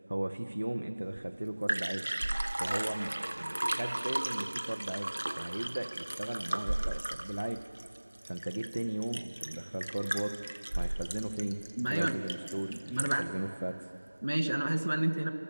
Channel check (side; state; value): both; inverted; correlation -1.00